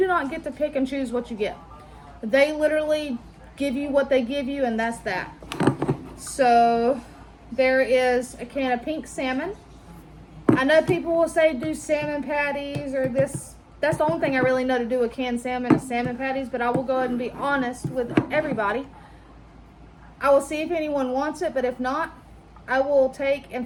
not get to pick and choose what you get. They literally give you what they give you, and that's that. So there is a can of pink salmon. I know people will say do salmon patties or this. That's the only thing I really know to do with canned salmon is salmon patties, but I will go ahead and be honest with everybody. I will see if anyone wants it, but if not, I will take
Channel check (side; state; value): both; identical; correlation 1.00